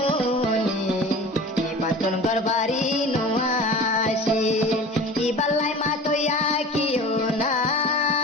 ইবাতুন গরবারি নোয়াশি ইবালাই মা তো ইয়া কিয় না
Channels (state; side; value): normal; both; correlation 0.38